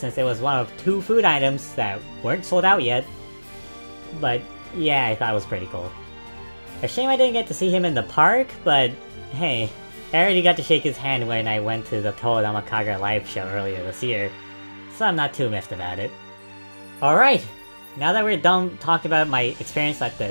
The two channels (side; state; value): both; inverted; correlation -1.00